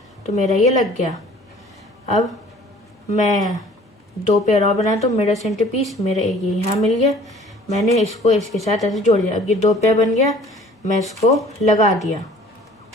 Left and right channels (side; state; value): both; normal; correlation 0.51